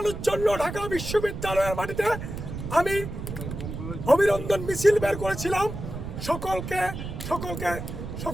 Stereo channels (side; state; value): right; noise; rumble, 7 dB below the sound